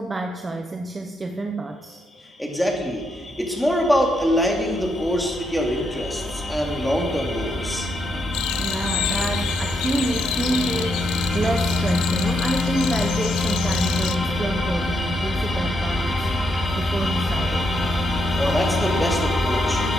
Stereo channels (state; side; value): normal; both; correlation 0.79